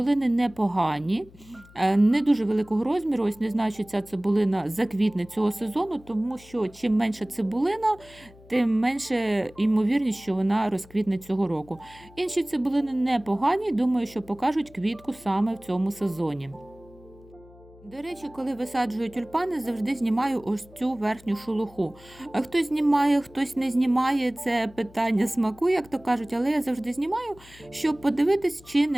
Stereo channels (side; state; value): left; noise; hum, 23 dB below the sound